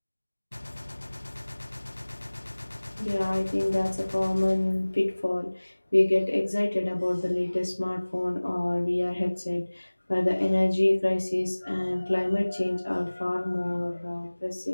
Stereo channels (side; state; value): both; inverted; correlation -1.00